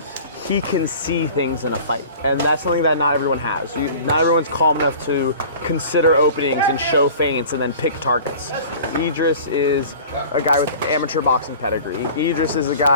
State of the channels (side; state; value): both; inverted; correlation -0.43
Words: he can see things in a fight, and that's something that not everyone has. Not everyone's calm enough to consider openings and show feints and then pick targets. Idris is a guy with amateur boxing pedigree. Idris is a